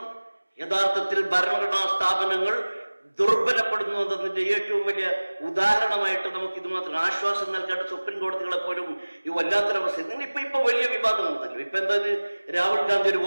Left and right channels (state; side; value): inverted; both; correlation -1.00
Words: യഥാർത്ഥത്തിൽ ഭരണഘടനാ സ്ഥാപനങ്ങൾ ദുർബലപ്പെടുന്നു എന്നതിന്റെ ഏറ്റവും വലിയ ഉദാഹരണമായിട്ട് നമുക്ക് ഇത് മാത്രം ആശ്വാസം നൽകേണ്ട സുപ്രീം കോടതികളെ പോലും ഈ വല്ലാത്തൊരവസ്ഥ. ഇപ്പൊ വലിയ വിവാദം ഉണ്ടല്ലോ. ഇപ്പൊ എന്താ, രാഹുൽ ഗാന്ധി ഒരു